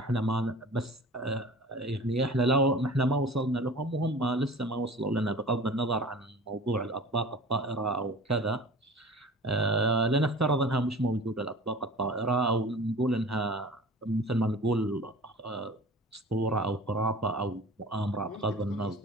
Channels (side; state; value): both; normal; correlation 0.41